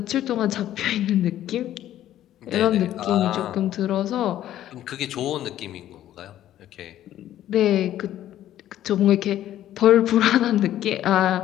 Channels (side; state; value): right; quieter; 12.4 dB